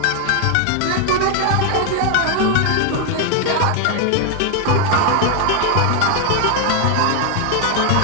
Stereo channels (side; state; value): both; different; correlation 0.00